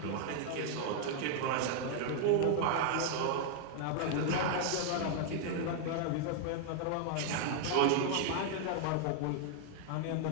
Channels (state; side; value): different; both; correlation 0.00